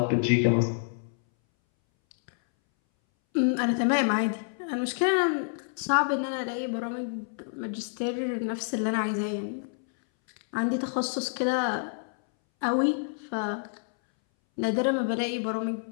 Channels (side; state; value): right; silent; 59 dB below the other